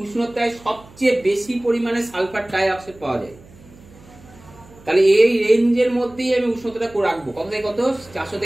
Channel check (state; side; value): noise; right; hum, 23 dB below the sound